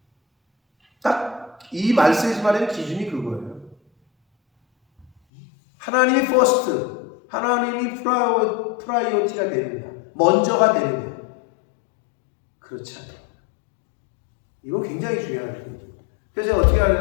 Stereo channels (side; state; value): right; drops out; at 5.1 s